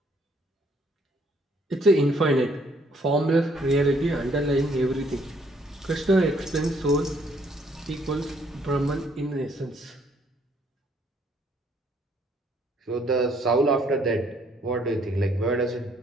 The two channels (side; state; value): both; normal; correlation 0.66